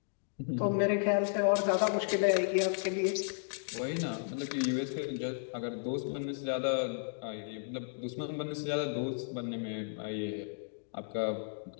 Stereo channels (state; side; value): silent; right; digital silence